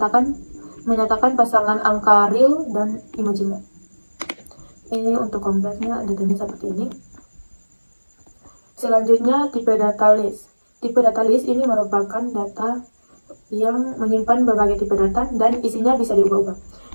menyatakan pasangan angka real dan imajiner. Ini untuk kompleksnya datanya seperti ini. Selanjutnya tipe data list. Tipe data list ini merupakan data yang menyimpan berbagai tipe data dan isinya bisa diubah-ubah.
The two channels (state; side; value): inverted; both; correlation -1.00